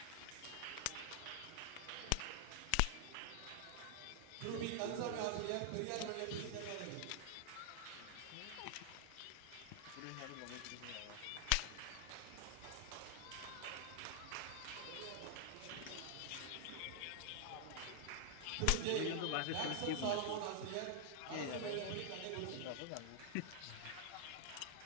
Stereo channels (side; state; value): both; different; correlation 0.00